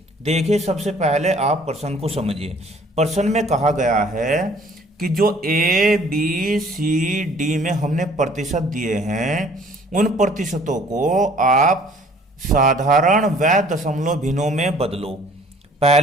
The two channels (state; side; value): normal; both; correlation 0.55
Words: देखिए सबसे पहले आप प्रश्न को समझिए। प्रश्न में कहा गया है कि जो ए बी सी डी में हमने प्रतिशत दिए हैं उन प्रतिशतों को आप साधारण व दशमलव भिन्नों में बदलो।